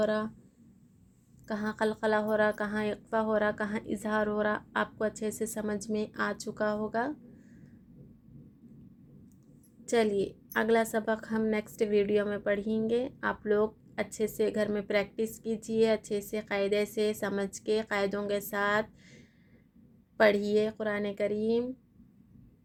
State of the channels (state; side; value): identical; both; correlation 1.00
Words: रहा, कहाँ कलकला हो रहा, कहाँ इक़्फ़ा हो रहा, कहाँ इजहार हो रहा, आपको अच्छे से समझ में आ चुका होगा। चलिए अगला सबक हम नेक्स्ट वीडियो में पढ़ेंगे। आप लोग अच्छे से घर में प्रैक्टिस कीजिए, अच्छे से क़ायदे से समझ के क़ायदों के साथ पढ़िए कुरान करीम